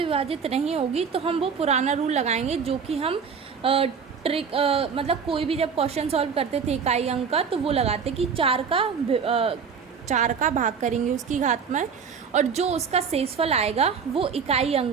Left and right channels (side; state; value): left; quieter; 6.3 dB